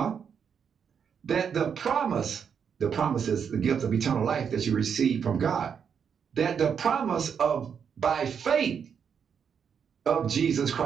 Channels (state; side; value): quieter; left; 7.2 dB